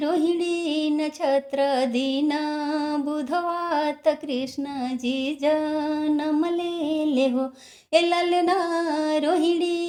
रोहिणी नक्षत्र दिन बुधवा त कृष्ण जी जन्म ले हो ए ललना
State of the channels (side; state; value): both; identical; correlation 1.00